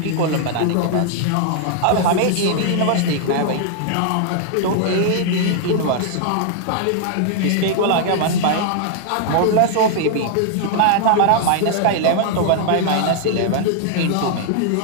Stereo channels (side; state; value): both; different; correlation -0.01